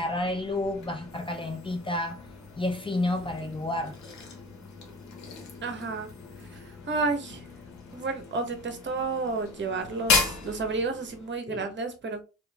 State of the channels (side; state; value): both; normal; correlation 0.30